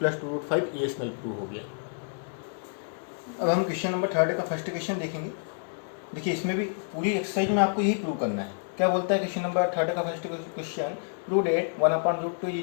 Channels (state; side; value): silent; right; 59 dB below the other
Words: 2 root 5 irrational प्रूव हो गया। अब हम क्वेश्चन नंबर 3 का फर्स्ट क्वेश्चन देखेंगे। देखिए इसमें भी पूरी एक्सरसाइज में आपको यही प्रूव करना है। क्या बोलता है क्वेश्चन नंबर 3 का first question, prove that 1/√2 is